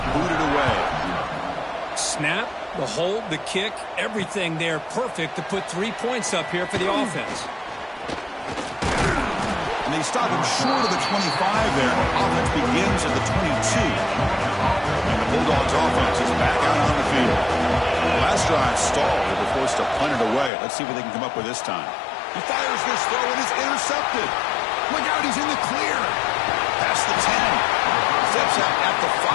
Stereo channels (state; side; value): drops out; right; at 20.5 s